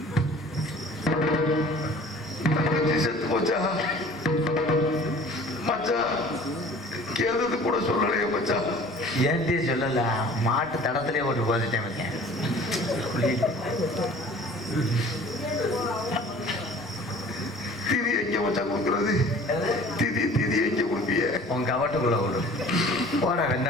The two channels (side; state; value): both; normal; correlation 0.47